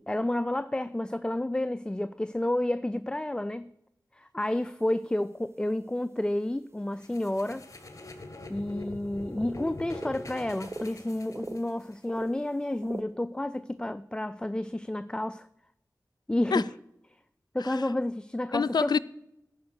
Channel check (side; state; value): both; normal; correlation 0.94